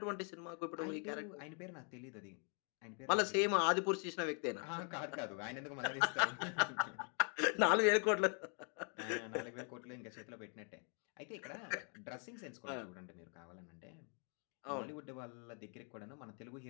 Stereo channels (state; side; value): quieter; right; 39.4 dB